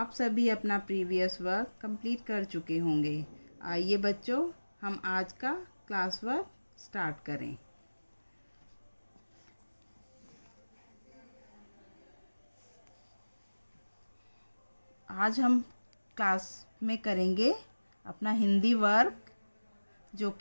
सभी अपना previous work complete कर चुके होंगे। आइए बच्चों, हम आज का क्लास वर्क स्टार्ट करें। आज हम क्लास में करेंगे अपना हिंदी वर्क, जो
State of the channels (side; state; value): both; inverted; correlation -1.00